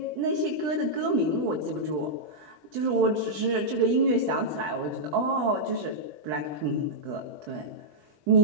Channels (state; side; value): late; left; 20 ms